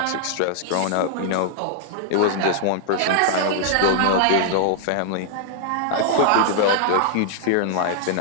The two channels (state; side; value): different; both; correlation -0.01